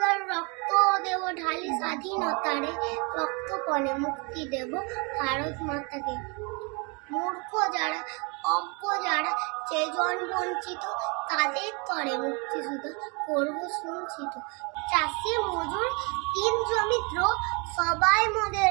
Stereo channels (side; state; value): left; quieter; 31.7 dB